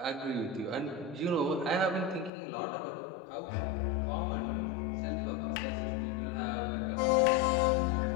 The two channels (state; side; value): drops out; right; at 2.3 s